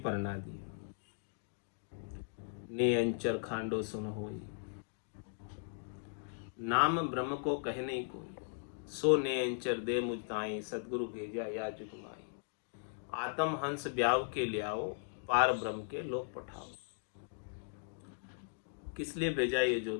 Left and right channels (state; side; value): silent; right; digital silence